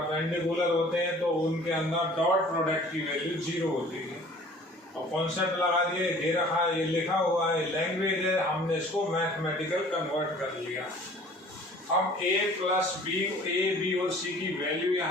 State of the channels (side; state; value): both; normal; correlation 0.50